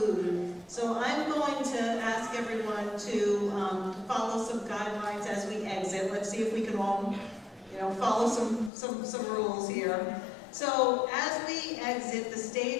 So I'm going to ask everyone to follow some guidelines as we exit. Let's see if we can all, follow some rules here. So as we exit, the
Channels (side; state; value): right; drops out; at 8.7 s